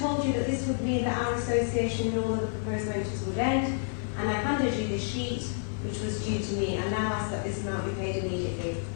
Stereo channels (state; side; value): silent; right; digital silence